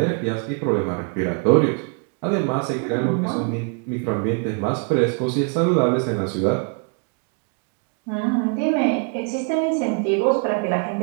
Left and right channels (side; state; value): left; quieter; 39.5 dB